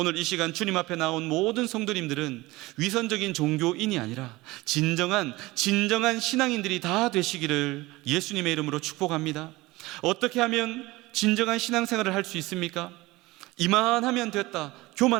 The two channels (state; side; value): quieter; left; 20.4 dB